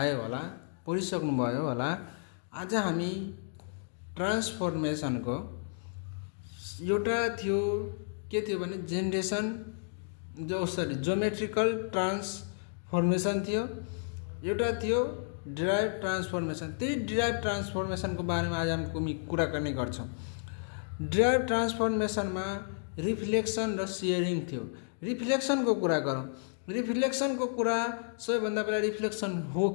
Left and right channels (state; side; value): silent; right; digital silence